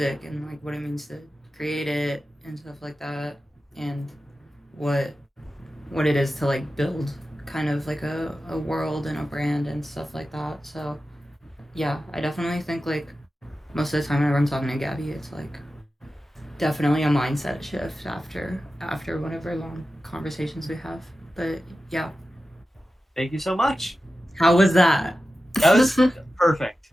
and like what it means to create it and stuff like that, and what it is to like build kind of like a world and a brand and stuff like that. So yeah, I definitely think like most of the time whenever I'm talking to Gabby, it's like definitely a mindset shift after whatever long conversations we have. But yeah. Thank you so much. How was that? That was perfect.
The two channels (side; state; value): both; normal; correlation 0.93